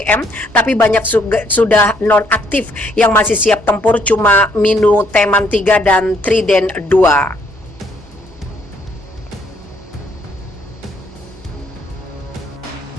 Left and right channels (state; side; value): normal; both; correlation 0.68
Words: tapi banyak sudah non-aktif yang masih siap tempur, cuma Minu Teman 3 dan Trident 2.